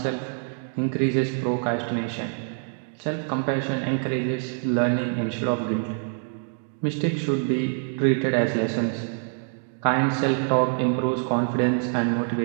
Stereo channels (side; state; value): left; silent; 59 dB below the other